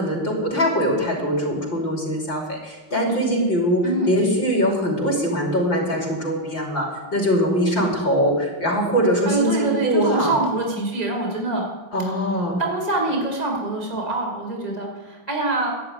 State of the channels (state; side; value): late; right; 5.7 ms